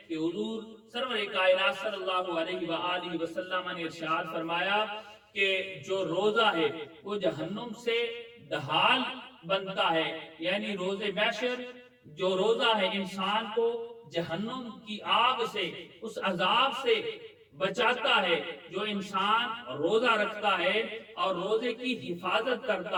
کہ حضور سرور کائنات صلی اللہ علیہ وآلہ وسلم نے ارشاد فرمایا کہ جو روزہ ہے وہ جہنم سے ڈھال بنتا ہے، یعنی روز محشر جو روزہ ہے انسان کو جہنم کی آگ سے، اس عذاب سے بچاتا ہے۔ جو انسان روزہ رکھتا ہے اور روزے کی حفاظت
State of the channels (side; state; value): both; identical; correlation 1.00